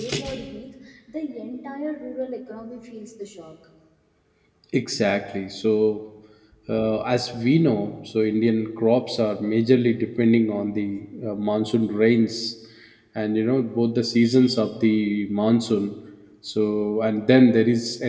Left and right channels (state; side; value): identical; both; correlation 1.00